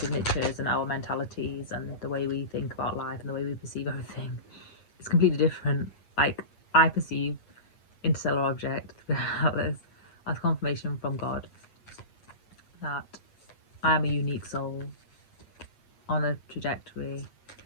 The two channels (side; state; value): right; late; 8.4 ms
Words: and our mentalities and the way we think about life and the way we perceive everything. It's completely different. Like, I perceive interstellar object, the Atlas, as confirmation from God that I am a unique soul on a trajectory,